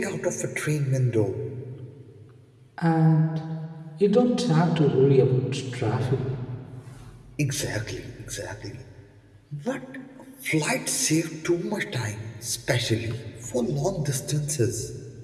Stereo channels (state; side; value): identical; both; correlation 1.00